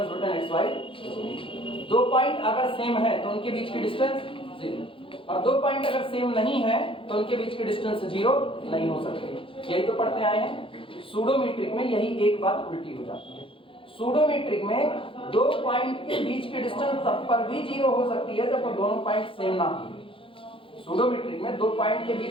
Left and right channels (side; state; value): right; late; 0.25 ms